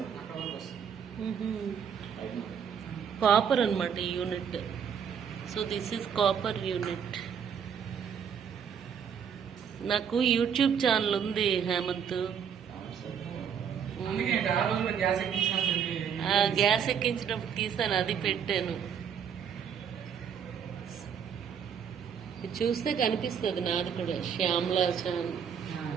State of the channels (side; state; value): left; quieter; 7.6 dB